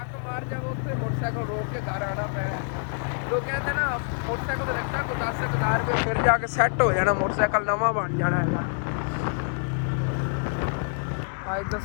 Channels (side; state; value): right; silent; 61 dB below the other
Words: ਮਾਰ ਜਾਵੇ ਉੱਥੇ ਮੋਟਰਸਾਈਕਲ ਰੋਕ ਕੇ ਘਰ ਆਉਣਾ ਪਏਗਾ। ਲੋਕ ਕਹਿੰਦੇ ਨਾ ਮੋਟਰਸਾਈਕਲ ਦਾ ਰਖਤਾ ਕੋ 10,000 ਰੁਪਏ, ਫਿਰ ਜਾ ਕੇ ਸੈੱਟ ਹੋ ਜਾਣਾ, ਮੋਟਰਸਾਈਕਲ ਨਵਾਂ ਬਣ ਜਾਣਾ ਹੈਗਾ। ਅੱਜ ਤਾਂ